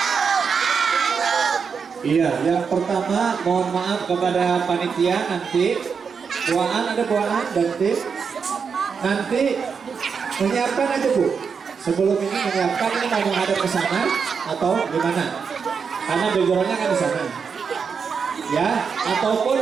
Iya, yang pertama mohon maaf kepada panitia, nanti ada buaan nanti menyiapkan aja Bu. Sebelum ini menyiapkan, ini mau menghadap ke sana atau gimana? Karena backgroundnya kan di sana. Ya,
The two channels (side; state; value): left; quieter; 6.0 dB